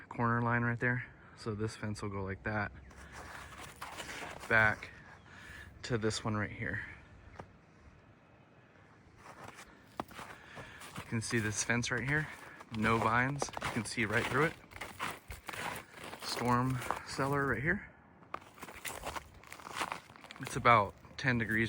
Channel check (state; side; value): identical; both; correlation 1.00